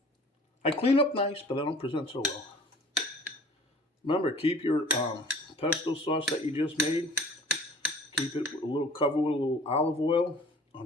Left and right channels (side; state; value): both; normal; correlation 0.48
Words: I clean up nice, but I don't present so well. Remember, keep your pesto sauce that you just made. Keep it covered with a little olive oil